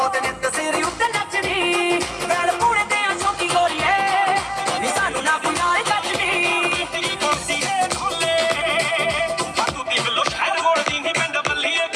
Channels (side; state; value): both; identical; correlation 1.00